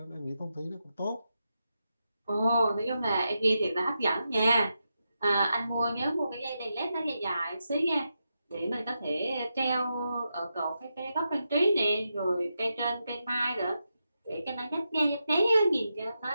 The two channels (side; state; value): both; inverted; correlation -0.87